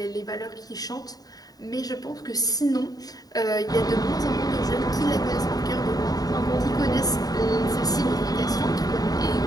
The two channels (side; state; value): right; late; 0.18 ms